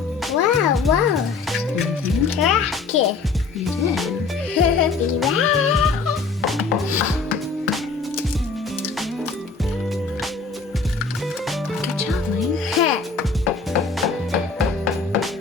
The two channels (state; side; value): quieter; right; 4.6 dB